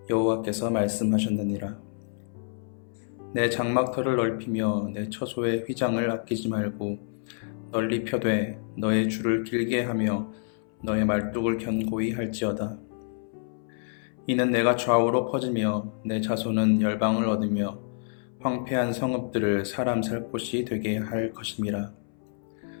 여호와께서 말씀하셨느니라. 내 장막터를 넓히며 내 처소의 휘장을 아끼지 말고 널리 펴되 너의 줄을 길게 하며 너의 말뚝을 견고히 할지어다. 이는 내가 좌우로 퍼지며 내 자손은 열방을 얻으며 황폐한 성읍들을 사람 살 곳이 되게 할 것임이라.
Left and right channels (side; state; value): right; silent; 60 dB below the other